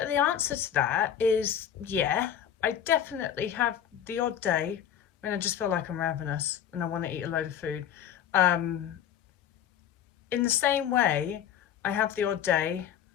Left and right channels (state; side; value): quieter; right; 9.6 dB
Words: the answer to that is yeah, I definitely have the odd day when I just feel like I'm ravenous and I want to eat a load of food. Um, in the same way, I have the odd day